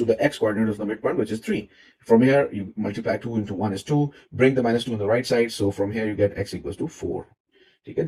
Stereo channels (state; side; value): identical; both; correlation 1.00